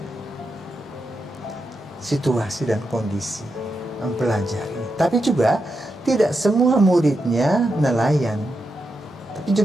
situasi dan kondisi, mempelajari. Tapi juga tidak semua muridnya nelayan, tapi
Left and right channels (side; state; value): both; normal; correlation 0.86